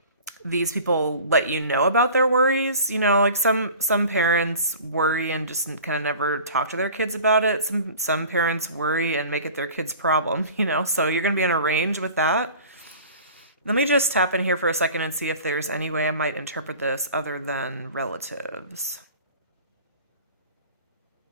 these people let you know about their worries. Like some parents worry and just kind of never talk to their kids about it. Some parents worry and make it their kid's problem, so you're going to be on a range with that. Let me just tap in here for a second and see if there's any way I might interpret this other than relatives.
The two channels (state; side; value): inverted; both; correlation -0.43